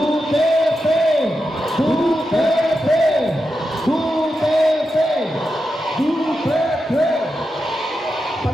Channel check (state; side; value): normal; both; correlation 0.88